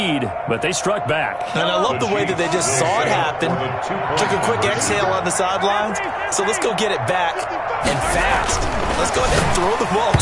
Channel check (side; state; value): both; identical; correlation 1.00